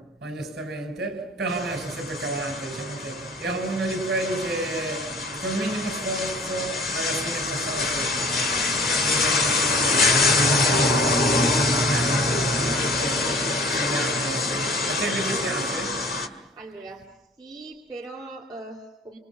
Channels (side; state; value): both; normal; correlation 0.47